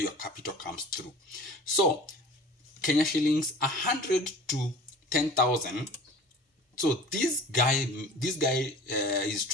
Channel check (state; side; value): normal; both; correlation 0.43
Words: capital comes through. So Kenya shillings 100 to 10,000. So this guy is